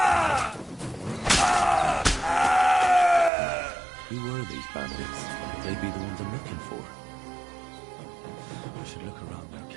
Who were these bandits? Could they be the ones I'm looking for? I should look around their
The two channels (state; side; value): drops out; left; at 3.3 s